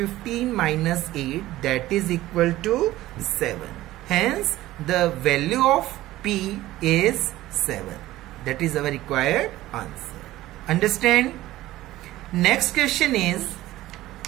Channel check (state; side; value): quieter; left; 16.0 dB